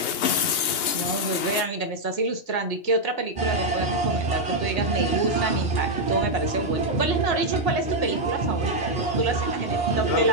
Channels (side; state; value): right; late; 3.2 ms